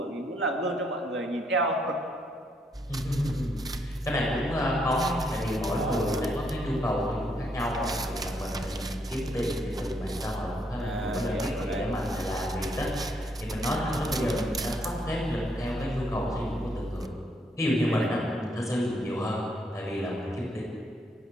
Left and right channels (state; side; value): normal; both; correlation 0.73